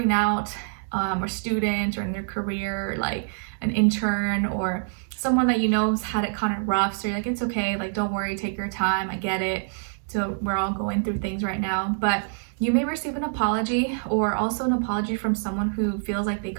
out, or student, or in their career, like an intern, or someone that you know has had it kind of rough. So you're like, it's okay, like, don't worry, take your time, I get it. So we're all going through things right now. But you may receive an apology, or also an apology from someone who feels like they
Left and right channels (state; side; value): silent; left; digital silence